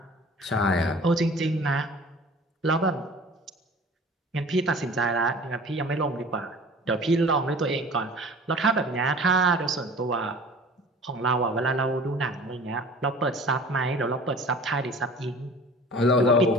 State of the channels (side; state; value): both; normal; correlation 0.44